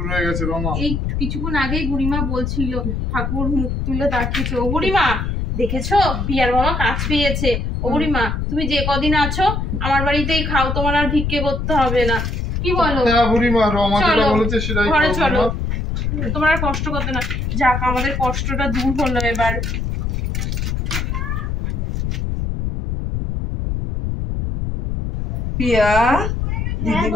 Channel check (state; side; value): noise; left; rumble, 1 dB below the sound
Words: হয়ে গেছে রমা। এই কিছুক্ষণ আগেই বুড়িমা বলছিল, ঠাকুর মুখ তুলে তাকিয়েছে। ও বুড়িমা দেখেছো, পিয়ার বাবা কাজ পেয়েছে। ও বুড়িমা তুমি যে কদিন আছো আমার বাড়িতেই খাও, তোমার আর ভিক্ষে করতে হবে না। কি বলো? হ্যাঁ বুড়িমা, রমা যেটা বলেছে সেটাই ঘরে চলো, তোমার আর কষ্ট করতে না। যাক, আমাদের কষ্টটা দূর হলো এবার। পিয়া, দিদি